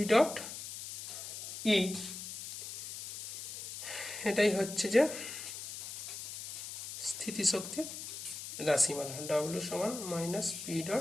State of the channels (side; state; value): left; noise; hiss, 9 dB below the sound